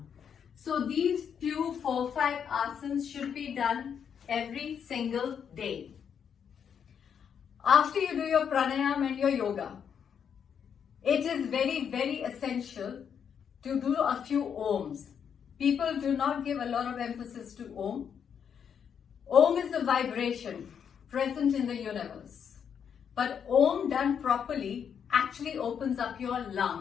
So these few 4-5 asanas should be done every single day. After you do your pranayama and your yoga, it is very, very essential to do a few ohms. People do not give a lot of emphasis to Om. Om is the vibration present in the universe. But Om done properly actually opens up your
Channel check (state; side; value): quieter; right; 7.7 dB